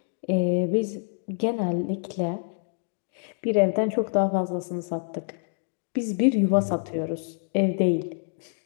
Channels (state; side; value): silent; right; digital silence